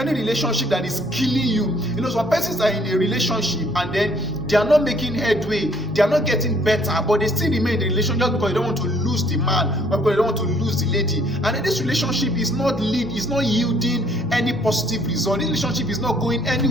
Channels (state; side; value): noise; right; rumble, 25 dB below the sound